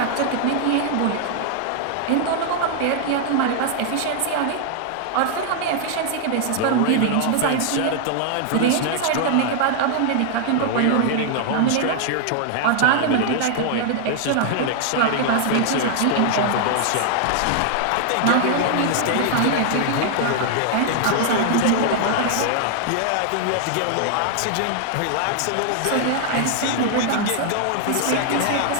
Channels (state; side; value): different; both; correlation 0.00